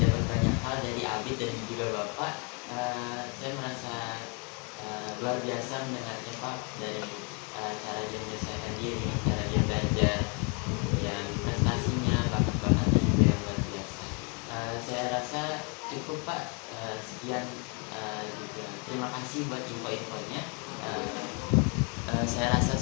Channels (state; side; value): quieter; right; 34.2 dB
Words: dapat banyak hal dari Abid dan juga Bapak. Saya merasa luar biasa mendengarnya Pak, dari cara dia menyelesaikan diri, cara dia belajar, dan prestasinya, bakat-bakatnya juga yang luar biasa. Saya rasa cukup Pak. Sekian juga terima kasih buat info-infonya. Saya rasa